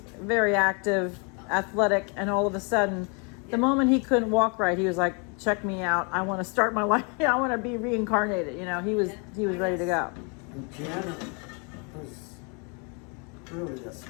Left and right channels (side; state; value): right; quieter; 34.8 dB